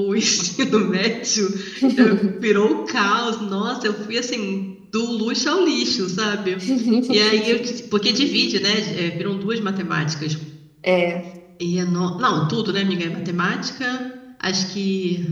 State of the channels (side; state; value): both; identical; correlation 1.00